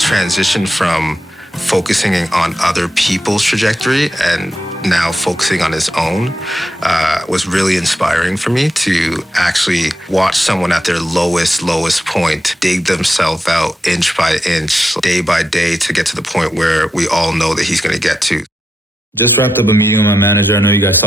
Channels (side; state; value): both; normal; correlation 0.86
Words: from focusing on other people's trajectory and now focusing on his own was really inspiring for me to actually watch someone at their lowest point dig themselves out inch by inch, day by day to get to the point where we all know that he's going to get to. Just wrapped up a meeting with my manager. I know you guys